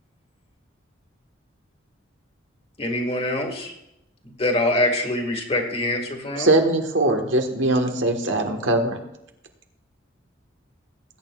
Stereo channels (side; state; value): both; normal; correlation 0.09